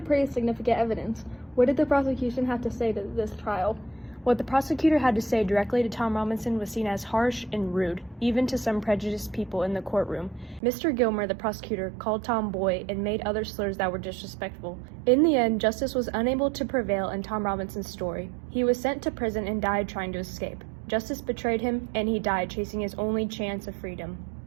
pretty significant evidence. What did the prosecution have to say to this trial? What the prosecutor had to say directly to Tom Robinson was seen as harsh and rude, even to some prejudiced people in the courtroom. Mr. Gilmer, the prosecutor, called Tom boy and made other slurs that were disrespectful. In the end, justice was unable to prevail in Tom Robinson's story. He was sent to prison and died trying to escape. Justice betrayed him, and he died chasing his only chance of freedom.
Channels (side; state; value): left; drops out; at 10.6 s